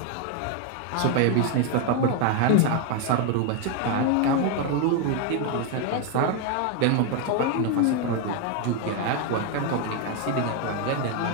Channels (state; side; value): different; both; correlation 0.01